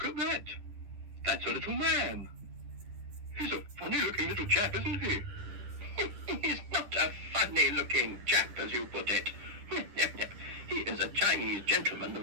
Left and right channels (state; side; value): late; left; 10 ms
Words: at that. That's a little man. He's a funny-looking little chap, isn't he? He's not a funny-looking chap, as you put it. He is a Chinese gentleman